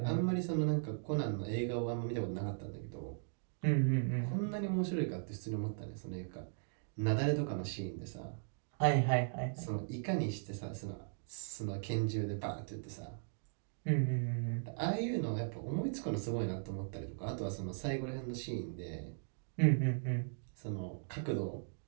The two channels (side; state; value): left; silent; digital silence